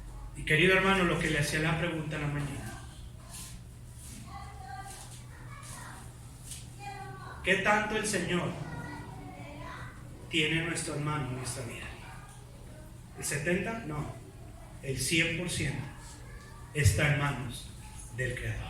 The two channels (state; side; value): identical; both; correlation 1.00